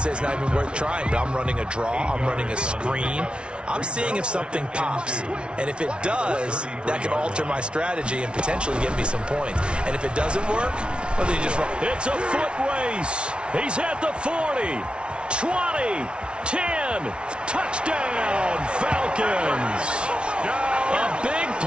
it's not even worth trying, but I'm running a draw. I'm running a screen. I'm seeing if something pops. And if it does, that can alter my strategy and potentially get me some points. And if it doesn't work, well, then you just run. It's a foot race. He's at the 40, 20, 10. Touchdown, Falcons. A big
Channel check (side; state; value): left; late; 0.058 ms